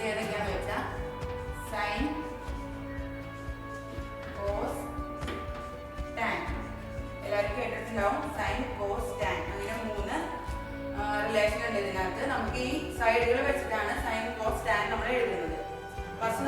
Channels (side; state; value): both; identical; correlation 1.00